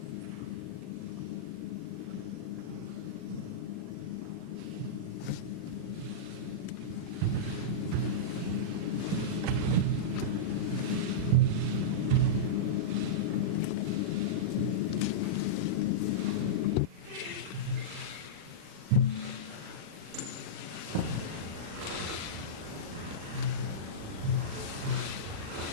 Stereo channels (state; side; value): late; left; 37 ms